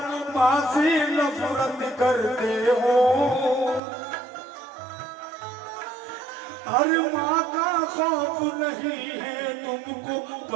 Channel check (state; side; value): drops out; left; at 3.8 s